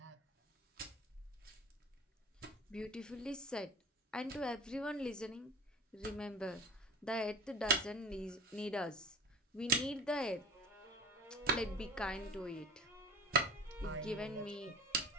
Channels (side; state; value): both; normal; correlation 0.37